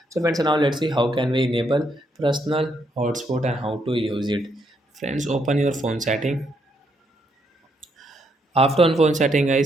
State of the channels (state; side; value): normal; both; correlation 0.75